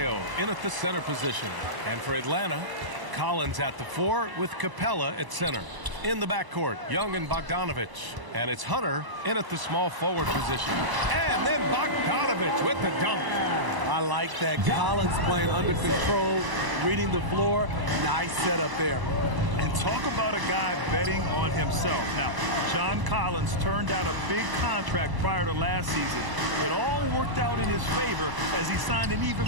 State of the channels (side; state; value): left; late; 1.0 ms